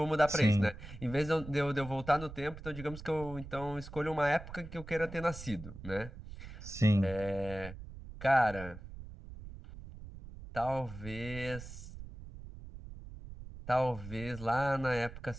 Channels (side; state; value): right; noise; rumble, 13 dB below the sound